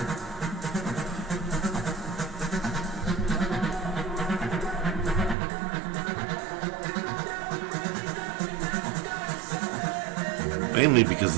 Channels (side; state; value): left; drops out; at 5.4 s